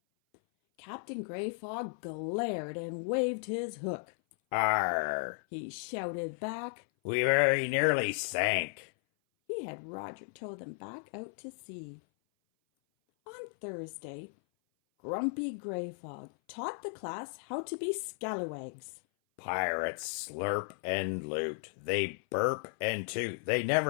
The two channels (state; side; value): silent; right; 55 dB below the other